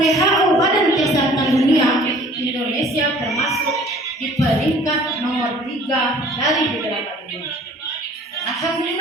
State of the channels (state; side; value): normal; both; correlation 0.51